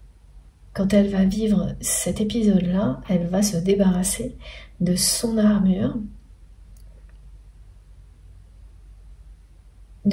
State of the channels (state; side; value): identical; both; correlation 1.00